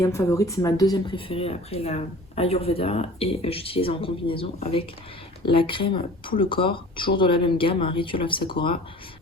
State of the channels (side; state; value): both; normal; correlation 0.44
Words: favorites. C'est ma deuxième préférée après la Ayurveda et j'utilise en combinaison avec la crème pour le corps, toujours de la même gamme, un Ritual of Sakura,